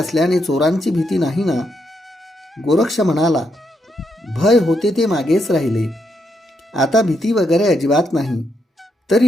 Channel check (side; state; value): both; normal; correlation 0.79